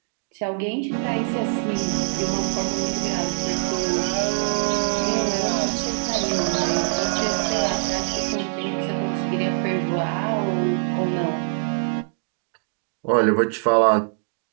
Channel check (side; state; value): left; silent; digital silence